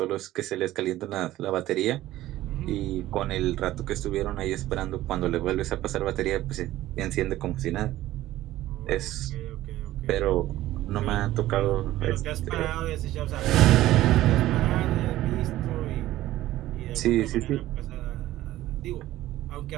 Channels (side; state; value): left; quieter; 15.1 dB